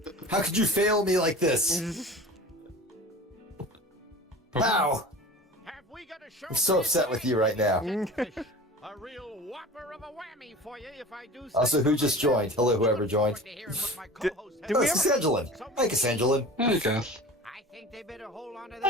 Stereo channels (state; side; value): normal; both; correlation 0.37